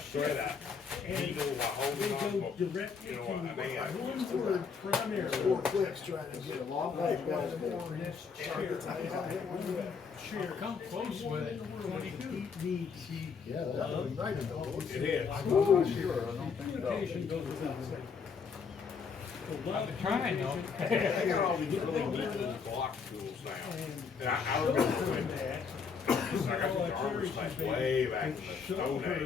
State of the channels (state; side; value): quieter; right; 5.8 dB